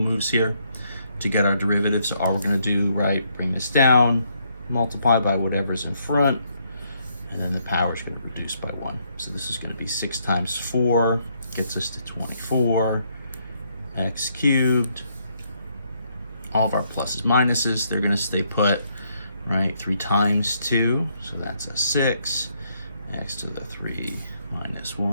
here to get our derivative. So all we're going to do, right, bring this down, multiply by whatever's in front, and then the power is going to reduce by 1. So this is going to be 6 times 4, gets us to 24, x cubed. All of our pluses, minuses, they're going to stay put, right? 3 times 2, so that's a 6. X to the 3 minus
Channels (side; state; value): both; inverted; correlation -0.73